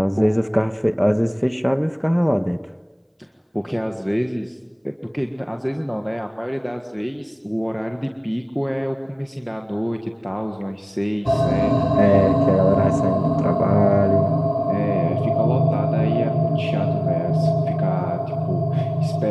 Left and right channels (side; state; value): both; identical; correlation 1.00